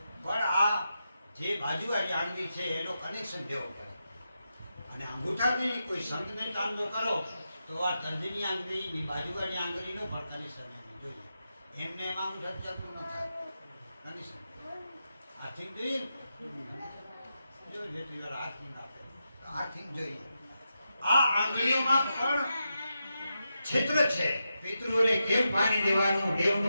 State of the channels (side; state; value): both; inverted; correlation -0.88